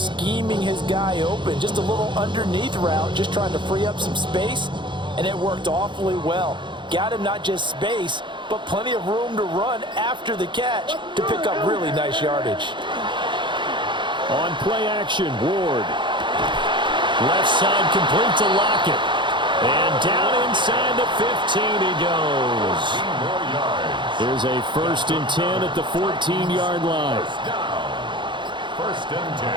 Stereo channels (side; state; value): left; late; 0.23 ms